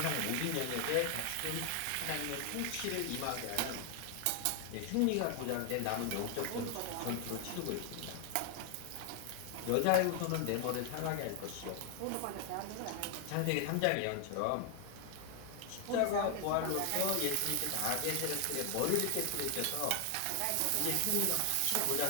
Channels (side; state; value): both; different; correlation 0.00